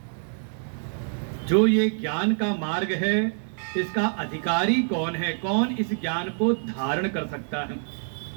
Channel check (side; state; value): left; silent; 61 dB below the other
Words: जो ये ज्ञान का मार्ग है इसका अधिकारी कौन है, कौन इस ज्ञान को धारण कर सकता है।